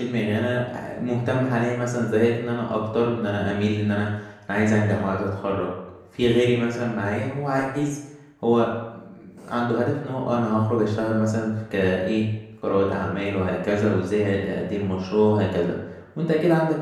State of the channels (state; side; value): identical; both; correlation 1.00